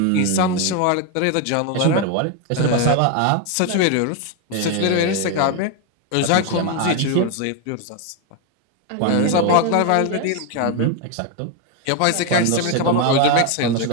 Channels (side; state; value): both; different; correlation 0.01